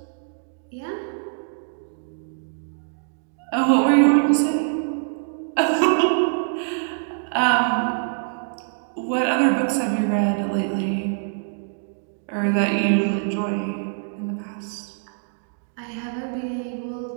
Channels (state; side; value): silent; left; digital silence